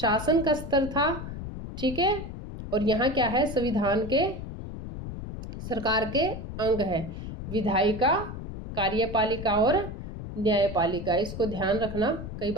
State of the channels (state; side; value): noise; left; rumble, 8 dB below the sound